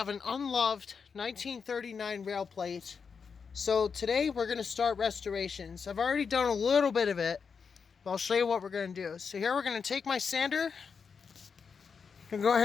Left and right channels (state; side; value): quieter; right; 5.9 dB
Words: an unloved 1939 rail plate. So today we're going to start restorations. I've already done a little bit of it, but I'll show you what we're going to do. So here we're going to take my sander. I'm going to go ahead